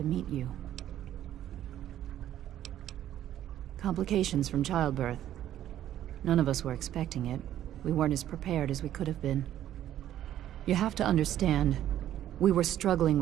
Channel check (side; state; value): left; quieter; 11.9 dB